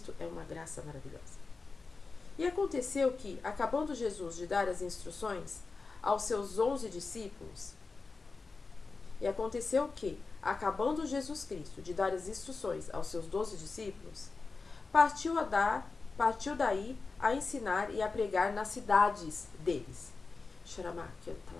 é uma graça maravilhosa. E aconteceu que, acabando Jesus de dar as instruções aos seus 11 discípulos, acabando Jesus Cristo de dar as instruções aos seus 12 discípulos, partiu daí a ensinar e a pregar nas cidades deles.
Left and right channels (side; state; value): right; quieter; 4.2 dB